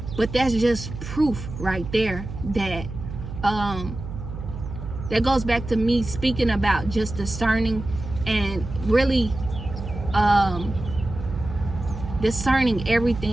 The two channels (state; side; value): noise; right; hum, 9 dB below the sound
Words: But that's just proof right there that that goes back to me speaking about just discerning, and really discerning